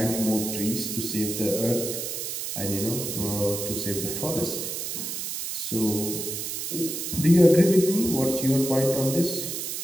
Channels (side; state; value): right; noise; hiss, 4 dB below the sound